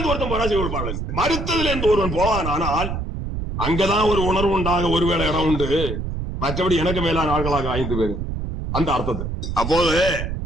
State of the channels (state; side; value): noise; right; rumble, 4 dB below the sound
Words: ஒருத்தன் போனா செய்ய கொடுப்பார்கள். மருத்துவத்துல இருந்து ஒருவன் போவான், ஆனால் அங்கதான் ஒரு உணர்வு உண்டாக ஒருவேளை இடம் உண்டு, மற்றபடி எனக்கு மேலான ஆட்களாக 5 பேர் அந்த அர்த்தத்தை. அப்போது